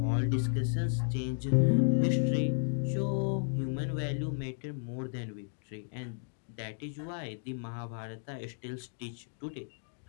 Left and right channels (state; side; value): silent; right; digital silence